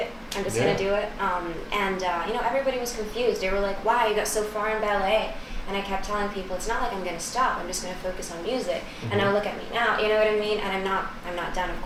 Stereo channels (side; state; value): both; identical; correlation 1.00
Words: I'm just gonna do it. Everybody was confused. They were like, wow, you got so far in ballet. And I kept telling people, it's not like I'm gonna stop. I'm just gonna focus on music. And now look at me now. You know what I mean? And I'm not done, of